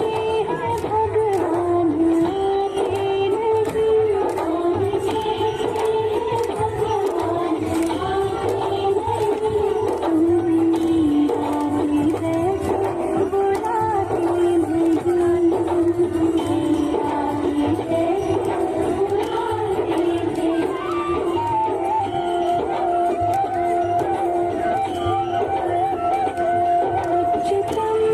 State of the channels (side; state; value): both; identical; correlation 1.00